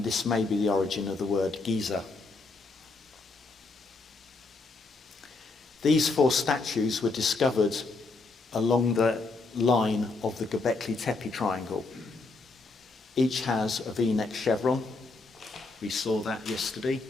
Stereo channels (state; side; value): quieter; right; 3.7 dB